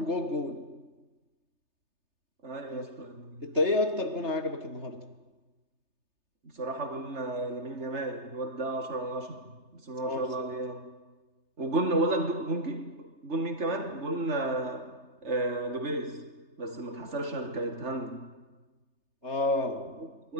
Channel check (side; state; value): left; late; 3.3 ms